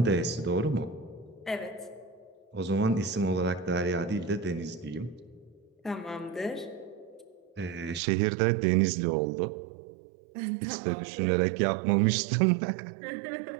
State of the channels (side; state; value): left; drops out; at 8.0 s